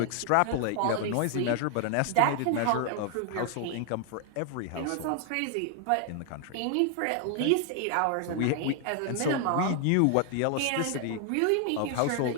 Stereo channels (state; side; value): different; both; correlation 0.00